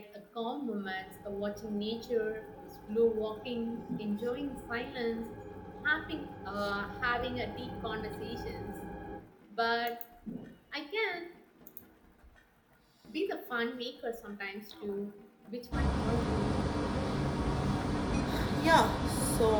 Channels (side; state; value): both; identical; correlation 1.00